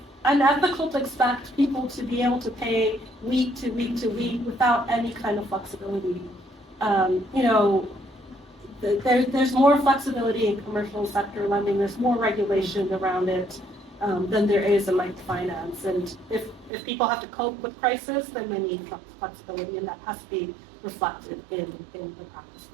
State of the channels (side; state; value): left; drops out; at 16.7 s